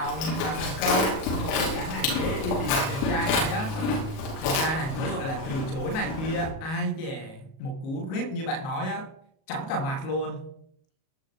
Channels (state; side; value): late; right; 37 ms